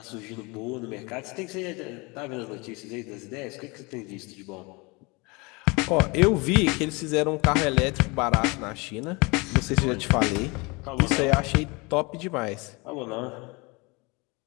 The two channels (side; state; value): right; quieter; 27.1 dB